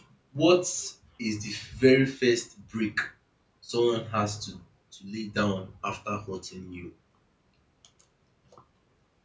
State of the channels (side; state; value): both; identical; correlation 1.00